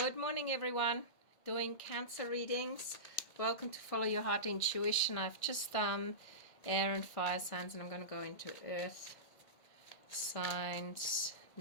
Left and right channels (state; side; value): late; right; 1.6 ms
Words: morning, everyone. Doing Cancer readings. Welcome to Follow Your Heart Intuition. I've just done air and fire signs, and I'm going to go into earth signs